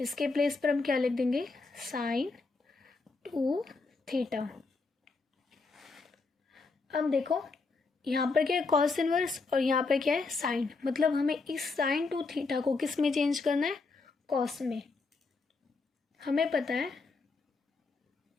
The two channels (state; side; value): quieter; right; 4.0 dB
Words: प्लेस पर हम क्या लिख देंगे, साइन 2 थीटा। अब देखो यहाँ पर क्या है, कॉस इनवर्स, और यहाँ पर क्या है, साइन। मतलब हमें इस साइन 2 थीटा को किस में चेंज करना है, कॉस में। हमें पता है